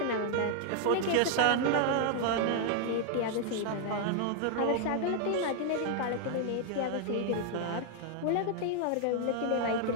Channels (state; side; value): different; both; correlation 0.00